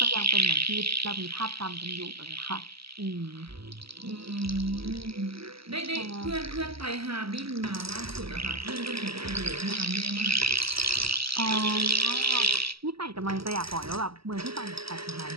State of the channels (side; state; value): left; late; 0.76 ms